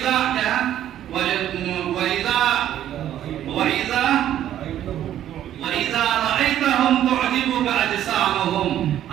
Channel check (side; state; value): left; quieter; 11.5 dB